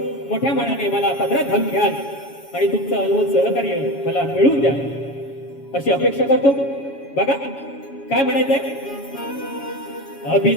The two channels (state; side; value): late; right; 7.2 ms